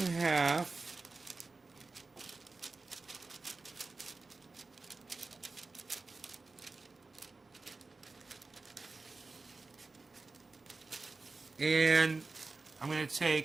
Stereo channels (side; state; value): left; quieter; 3.7 dB